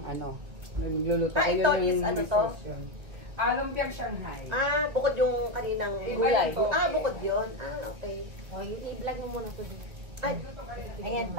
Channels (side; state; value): left; late; 1.7 ms